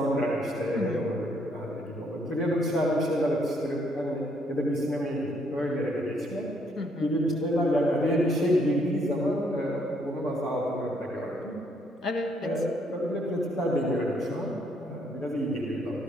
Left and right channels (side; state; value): both; normal; correlation 0.70